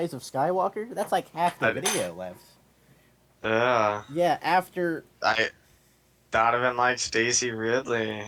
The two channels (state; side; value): identical; both; correlation 1.00